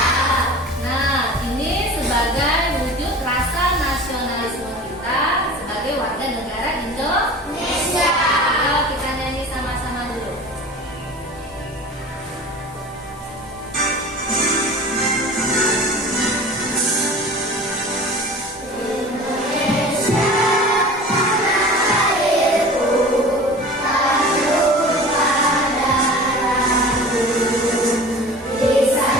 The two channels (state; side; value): normal; both; correlation 0.39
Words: Nah, ini sebagai wujud rasa nasionalisme kita sebagai warga negara Indonesia. Kalau kita nyanyi sama-sama dulu.